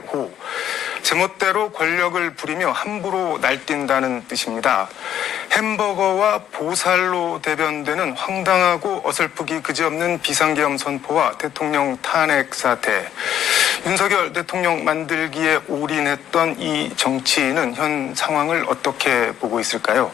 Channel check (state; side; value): quieter; right; 10.5 dB